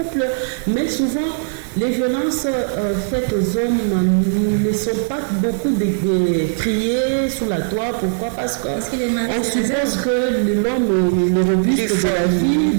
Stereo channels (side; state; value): left; silent; 61 dB below the other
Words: mais souvent les violences faites aux hommes ne sont pas beaucoup criées sur la toile. Pourquoi? Parce qu'on suppose que l'homme est le robuste de la vie,